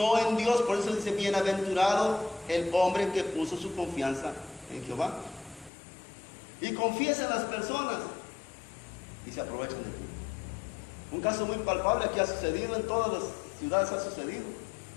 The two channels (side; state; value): right; drops out; at 5.7 s